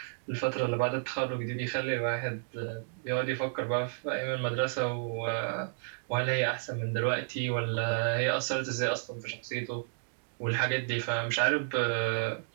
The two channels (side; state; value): left; silent; digital silence